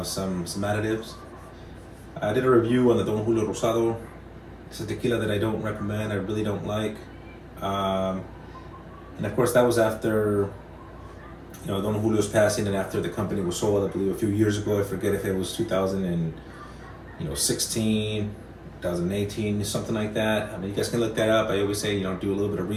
some additives. I did a review on the Don Julio Rosado. It's a tequila that I don't recommend, I really don't like. And of course that was after, you know, Don Julio's passing and after the company was sold, I believe a few years ago. I forget if it was 2016, 2018, something like that. I mean, you guys can look that up. I always say, you know, do a little bit of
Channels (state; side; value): identical; both; correlation 1.00